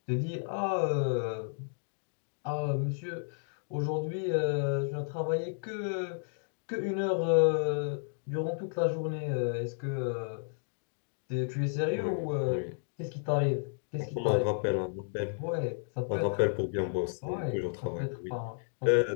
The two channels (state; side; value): silent; right; digital silence